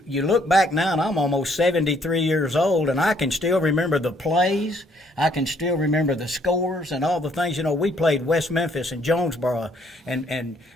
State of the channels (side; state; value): both; normal; correlation 0.67